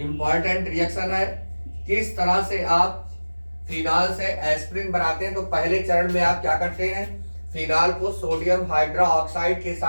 रिएक्शन है। किस तरह से आप फिनॉल से एस्प्रिन बनाते हैं, तो पहले चरण में आप क्या करते हैं, फिनॉल को सोडियम हाइड्रोक्साइड के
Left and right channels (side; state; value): both; inverted; correlation -1.00